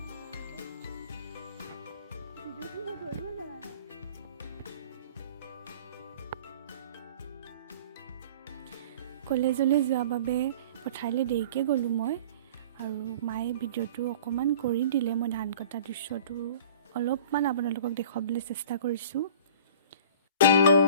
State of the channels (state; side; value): inverted; both; correlation -0.44